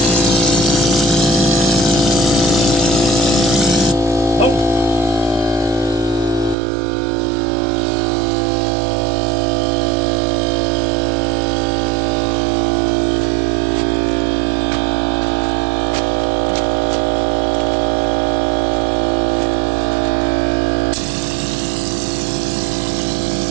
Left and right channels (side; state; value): left; drops out; at 6.6 s